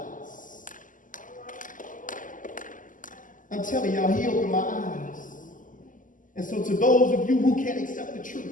I'm telling y'all, he opened my eyes. And so to those of you who can't accept the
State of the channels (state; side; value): late; right; 0.38 ms